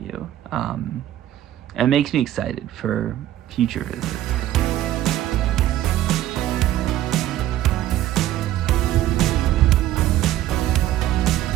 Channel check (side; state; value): left; quieter; 13.3 dB